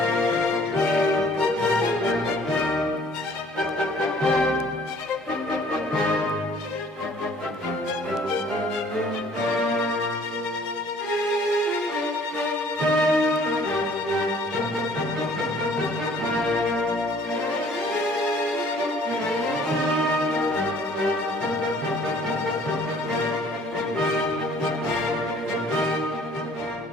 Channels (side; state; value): both; normal; correlation 0.55